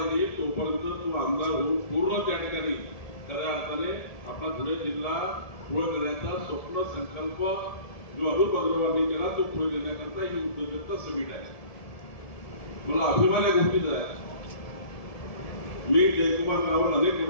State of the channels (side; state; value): right; late; 1.7 ms